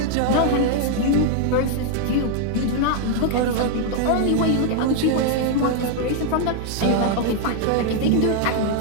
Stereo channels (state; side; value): different; both; correlation 0.00